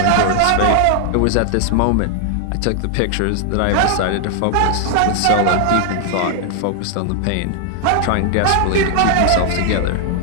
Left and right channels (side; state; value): both; different; correlation 0.00